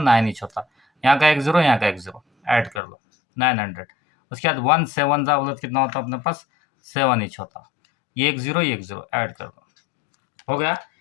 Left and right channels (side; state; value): right; drops out; at 2.8 s